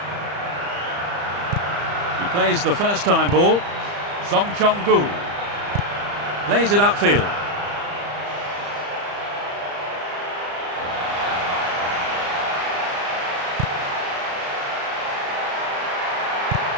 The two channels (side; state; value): left; late; 35 ms